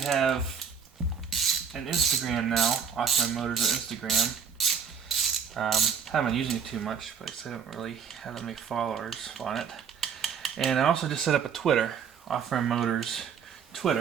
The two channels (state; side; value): quieter; left; 6.9 dB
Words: an Instagram now, Opferman Motors on Instagram. Haven't been using it too much, but I don't really have that many followers on it. And I also just set up a Twitter, Opferman Motors